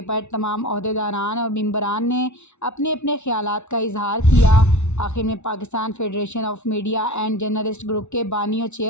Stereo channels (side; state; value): right; late; 0.82 ms